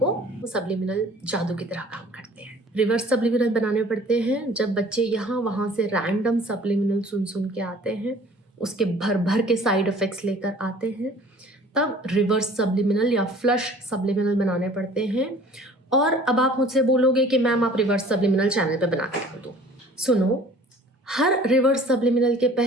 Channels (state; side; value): normal; both; correlation 0.50